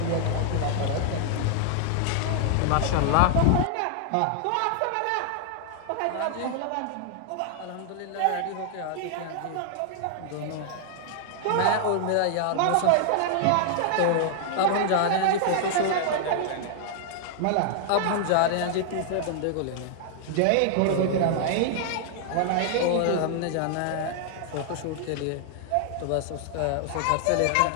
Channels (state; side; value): different; both; correlation -0.01